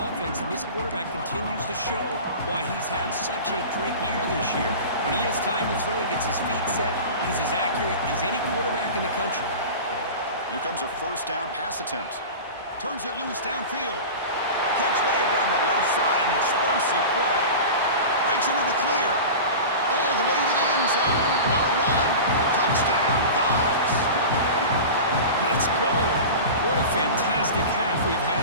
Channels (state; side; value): inverted; both; correlation -0.32